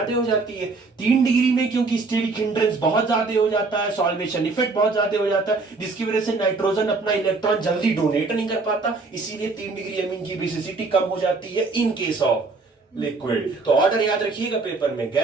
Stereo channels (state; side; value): quieter; left; 3.9 dB